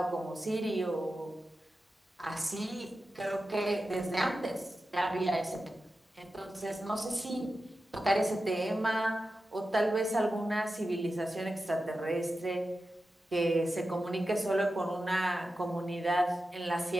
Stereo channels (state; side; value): normal; both; correlation 0.92